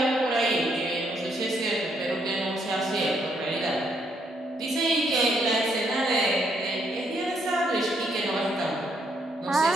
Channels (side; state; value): both; normal; correlation 0.73